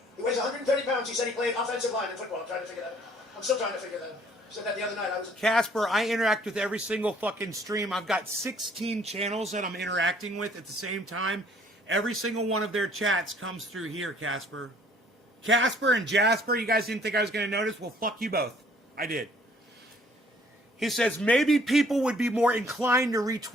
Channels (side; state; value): both; normal; correlation 0.59